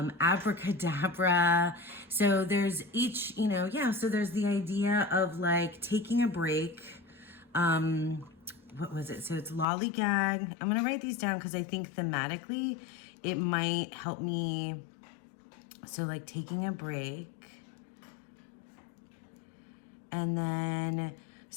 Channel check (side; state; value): right; drops out; at 9.7 s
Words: So there's each, you know, yeah, so there's the idea of like taking a break. What was it? So it's lollygag. I'm going to write these down because I think thematically it might help me. So like taking a break, and then